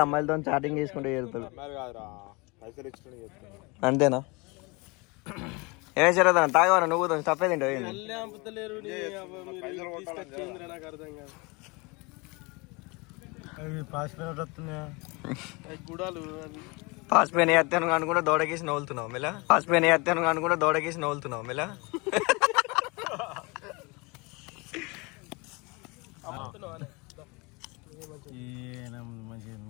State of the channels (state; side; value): quieter; right; 27.3 dB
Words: అమ్మాయిలతో చాటింగ్ చేసుకుంటూ చేరుతాడు అంతేనా ఏమే శరదన్న తాగవరా నువ్వు తప్పే తింటావు నాకు అర్థం కాదు గుడాలు పాసిపోయిన ఎత్తాను అనుకుంటే దోడకేసి నవ్వులుతున్నావు మెలా పాసిపోయిన ఎత్తాను అనుకుంటే దోడకేసి నవ్వులుతున్నావు మెలా